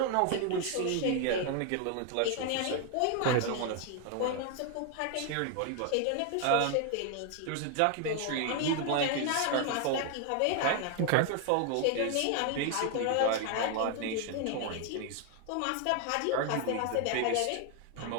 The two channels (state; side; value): different; both; correlation 0.01